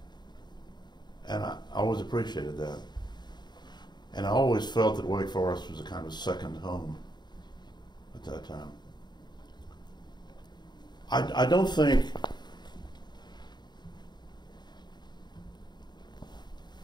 And I always appreciated that. And I always felt that Wake Forest was a kind of second home at that time. I don't think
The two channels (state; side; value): late; right; 0.21 ms